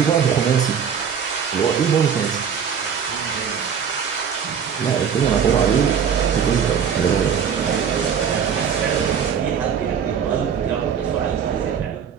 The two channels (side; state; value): left; quieter; 7.4 dB